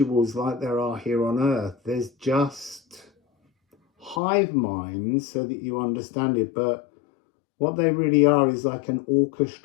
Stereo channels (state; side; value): drops out; right; at 4.2 s